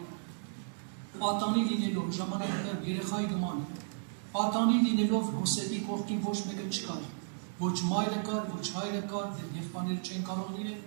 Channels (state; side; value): silent; left; digital silence